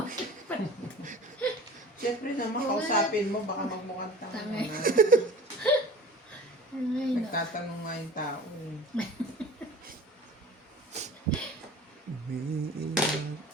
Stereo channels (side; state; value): both; normal; correlation 0.41